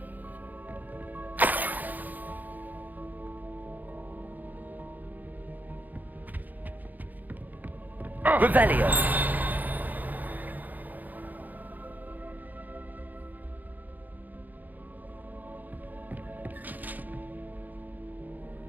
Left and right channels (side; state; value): left; late; 0.083 ms